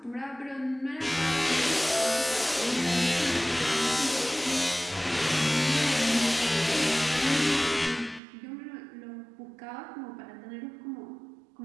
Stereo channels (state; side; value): drops out; left; at 8.2 s